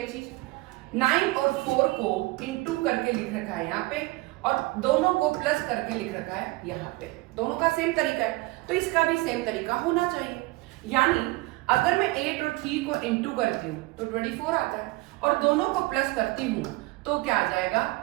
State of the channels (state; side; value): quieter; left; 21.9 dB